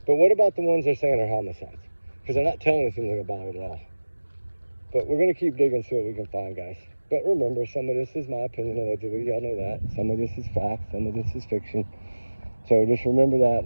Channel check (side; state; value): both; inverted; correlation -1.00